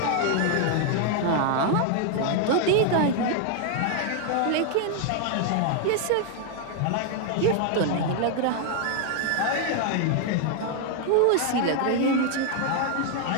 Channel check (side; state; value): both; different; correlation 0.00